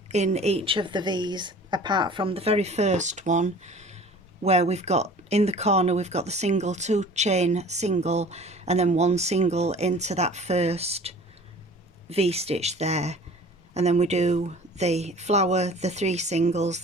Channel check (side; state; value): both; normal; correlation 0.45